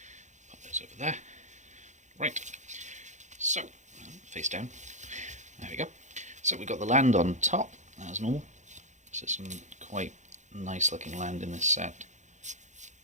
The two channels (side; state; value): left; late; 0.35 ms